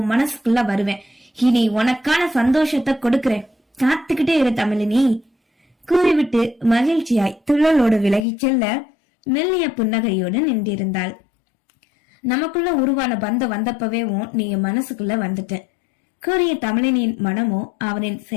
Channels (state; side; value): drops out; right; at 8.2 s